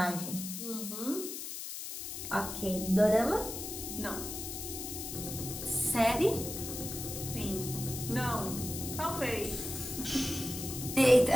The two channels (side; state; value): left; noise; hiss, 7 dB below the sound